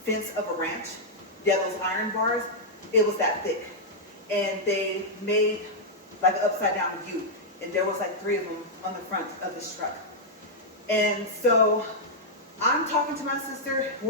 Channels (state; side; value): normal; both; correlation -0.06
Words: fence of a ranch. Yeah, those iron bars, it was that thick. And they made like an upside down U. And there was like 3 of them on the front of this truck. And so I'm talking to my sister.